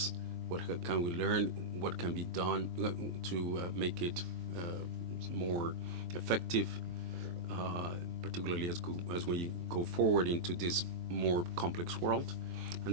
what can we learn, what can be done to make it more effective, particularly as we go forward into this more complex world.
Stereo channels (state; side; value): late; left; 23 ms